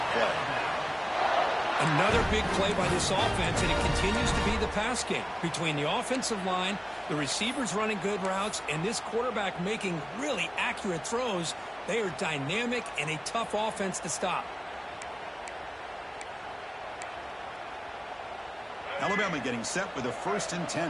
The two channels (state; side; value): identical; both; correlation 1.00